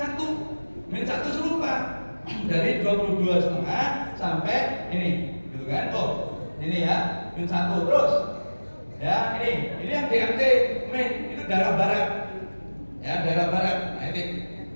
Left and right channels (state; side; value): inverted; both; correlation -1.00